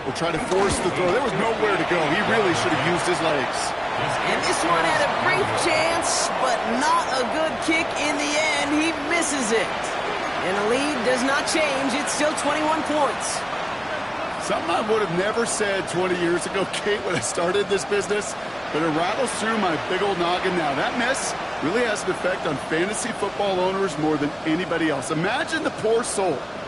or try to force the throw. There was nowhere to go. He really should have used his legs. And this one had a brief chance, but not a good kick in the end. He misses it. And the lead does not change. It's still 21 points. Something I would have never said 20 years ago, Kate, when I started this business, but it rattles through my big old noggin now. That miss really has an effect on fantasy football owners more than anybody else. Imagine the poor soul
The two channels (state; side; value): identical; both; correlation 1.00